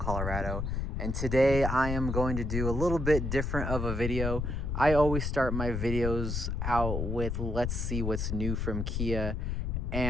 And today I am going to do a little bit different of a video. I always start my videos out with let's see what's new from Kia.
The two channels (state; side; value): noise; left; rumble, 1 dB below the sound